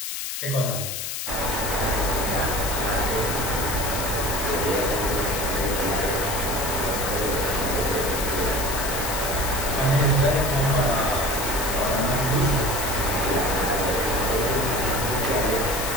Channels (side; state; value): left; noise; hiss, 4 dB below the sound